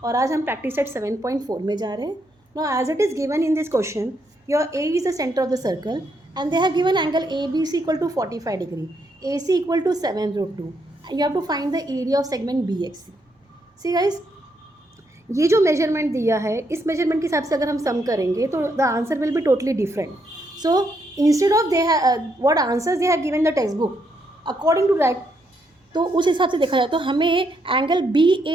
और आज हम practice set 7.4 में जा रहे हैं. Now as it is given in this question, your A is the center of the circle and they have given angle ABC equal to 45 degree, AC equal to 7 root 2 and you have to find the area of segment BXC. See guys, ये जो measurement दिया है इस measurement के हिसाब से अगर हम सम करेंगे तो the answer will be totally different. So instead of they what answers they have given the text book according to that, तो उस हिसाब से देखा जाए तो हमें एंगल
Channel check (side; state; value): both; normal; correlation 0.77